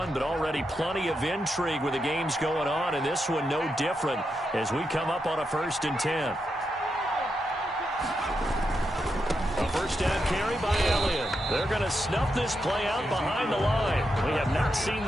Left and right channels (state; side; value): normal; both; correlation 0.85